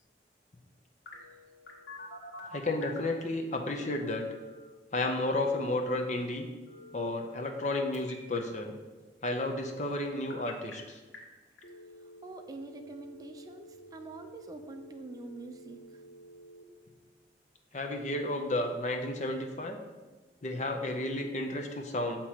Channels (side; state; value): both; normal; correlation 0.35